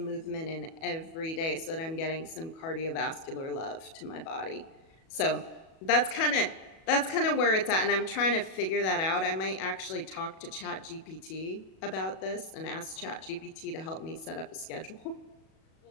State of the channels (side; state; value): right; late; 37 ms